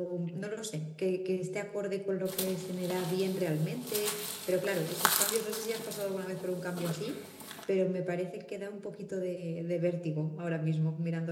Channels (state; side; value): identical; both; correlation 1.00